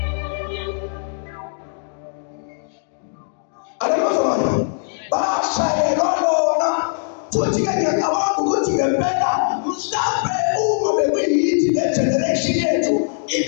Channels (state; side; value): silent; right; digital silence